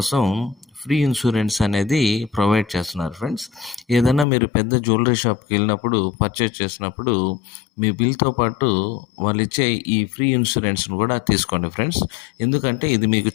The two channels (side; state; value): right; drops out; at 4.2 s